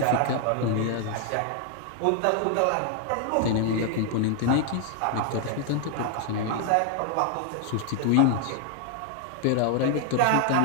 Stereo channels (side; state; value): both; different; correlation 0.00